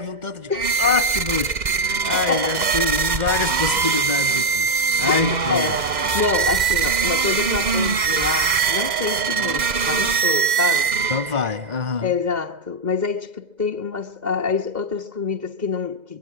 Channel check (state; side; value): late; left; 2.1 ms